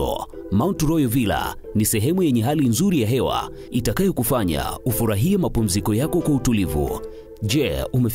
Mount Royal Villa ni sehemu yenye hali nzuri ya hewa itakayokufanya ufurahie mapumziko yako kwa utulivu. Je,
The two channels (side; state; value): both; identical; correlation 1.00